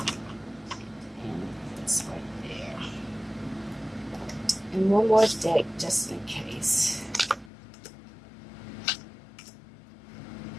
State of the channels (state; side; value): drops out; right; at 7.5 s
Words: And this right there. And one more deck just in case.